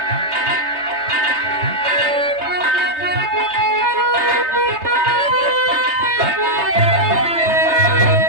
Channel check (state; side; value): late; left; 3.2 ms